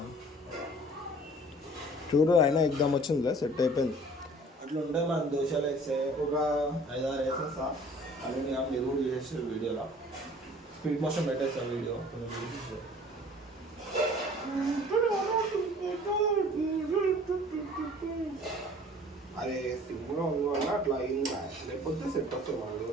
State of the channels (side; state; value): both; normal; correlation 0.50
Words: చూడు అయినా ఎగ్దాం వచ్చిందిలే, సెట్ అయిపోయింది. అట్లా ఉంటే మనం దోశలు వేస్తే ఒక 5-6 వేసేస్తా. అది మీరు కూడా చేసేసారు వీడియోలో. స్పీడ్ మోషన్ పెట్టేస్తా వీడియో అరే సింపుల్గా ఉంది వల్ల అట్లా అయిందా, లేకపోతే సెట్ వస్తుంది మన